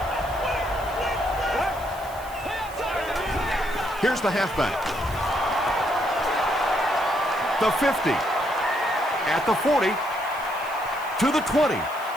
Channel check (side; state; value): right; noise; hiss, 19 dB below the sound